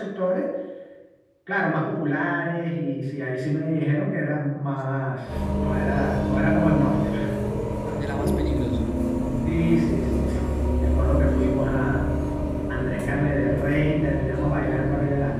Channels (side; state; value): both; identical; correlation 1.00